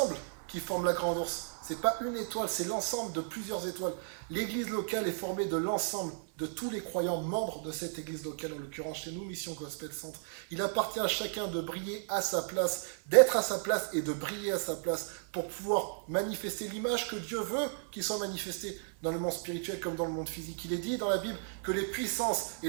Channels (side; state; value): left; silent; 55 dB below the other